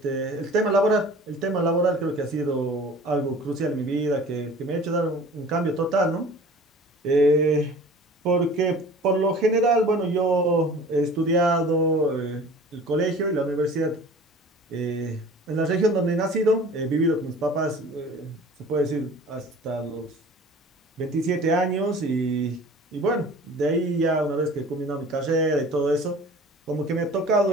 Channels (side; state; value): both; normal; correlation 0.44